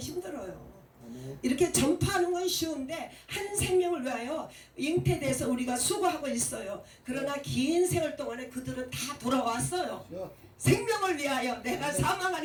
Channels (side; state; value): both; identical; correlation 1.00